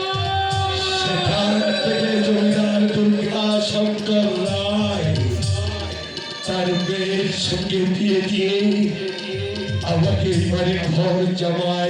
সেখান থেকে জমিদার দুর্গা শঙ্কর রায় তার মেয়ের সঙ্গে বিয়ে দিয়ে আমাকে এবারে ঘর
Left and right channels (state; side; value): identical; both; correlation 1.00